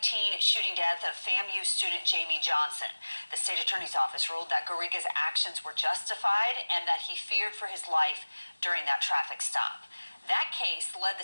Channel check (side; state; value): both; inverted; correlation -1.00